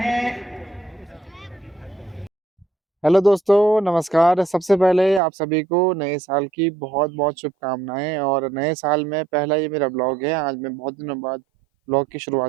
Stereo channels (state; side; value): drops out; left; at 5.2 s